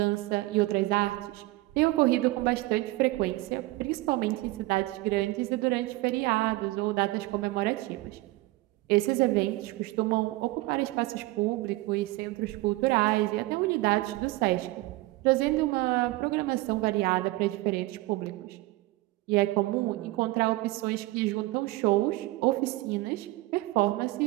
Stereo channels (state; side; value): quieter; left; 19.8 dB